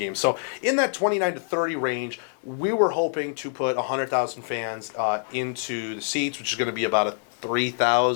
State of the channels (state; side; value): silent; right; digital silence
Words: So in that 29 to 30 range, we were hoping to put 100,000 fans into the seats, which is going to be about a